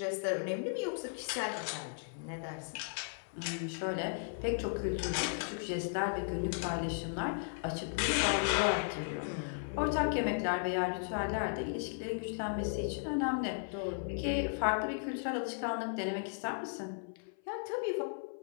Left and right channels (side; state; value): right; silent; 54 dB below the other